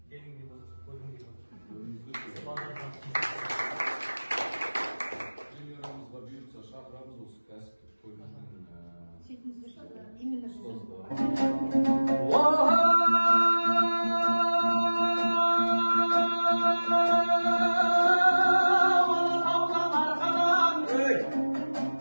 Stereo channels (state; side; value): inverted; both; correlation -1.00